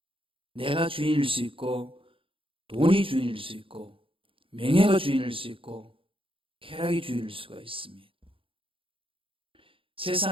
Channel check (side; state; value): left; late; 0.26 ms